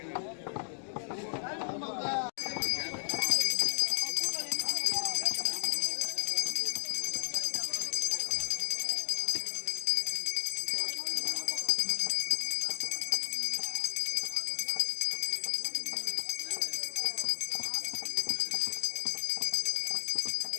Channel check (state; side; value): silent; right; digital silence